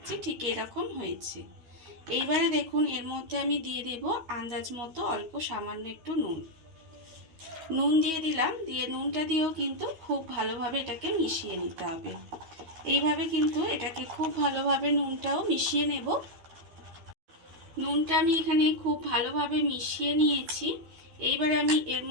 ঠিক এরকম হয়েছে। এইবারে দেখুন এর মধ্যে আমি দিয়ে দেব আন্দাজ মতো অল্প সামান্য একটু নুন দিয়ে দিলাম। দিয়ে নুনটা দিয়েও কিন্তু খুব ভালোভাবে এটাকে মিশিয়ে নিতে হবে। এইভাবে কিন্তু এটাকে খুব ভালোভাবে নুনটাও মিশিয়ে নেব। নুনটা আমি এখানে খুব ভালোভাবে মিশিয়ে নিয়েছি। এইবারে আমি এর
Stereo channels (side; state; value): left; late; 12 ms